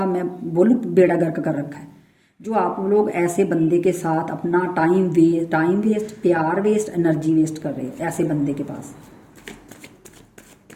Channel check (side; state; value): both; identical; correlation 1.00